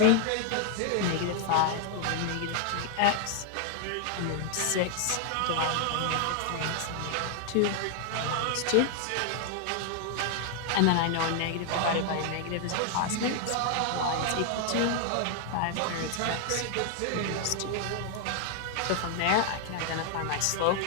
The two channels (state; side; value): different; both; correlation 0.00